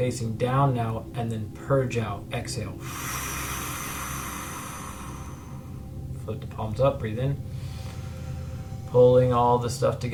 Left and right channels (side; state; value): both; identical; correlation 1.00